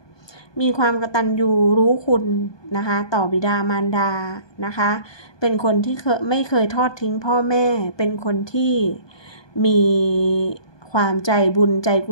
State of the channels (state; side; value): late; right; 1.2 ms